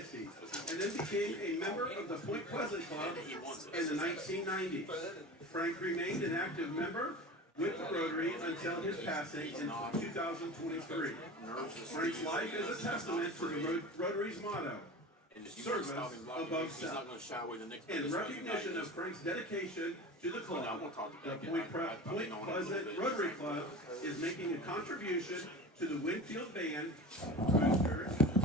and then became a member of the Point Pleasant Club in the 1990s. Frank remained an active member with the Rotary until his passing in 2023. Frank's life is a testament to the Rotary's motto, service above self. In recognition of Frank's dedication to the club, the Point Pleasant Rotary Club is making a contribution to the Winfield Band Boosters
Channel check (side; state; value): both; normal; correlation 0.33